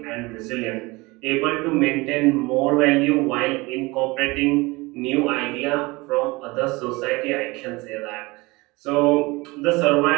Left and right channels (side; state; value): left; quieter; 23.4 dB